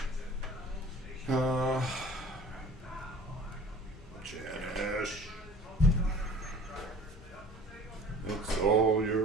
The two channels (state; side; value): normal; both; correlation 0.45